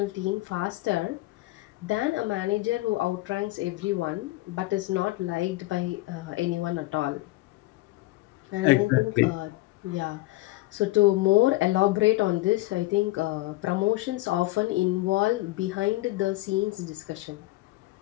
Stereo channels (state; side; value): quieter; right; 19.2 dB